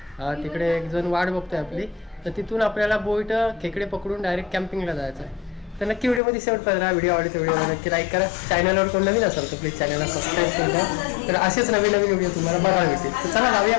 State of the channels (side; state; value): right; drops out; at 6.2 s